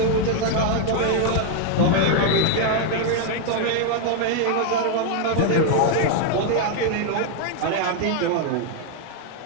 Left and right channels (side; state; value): both; different; correlation 0.00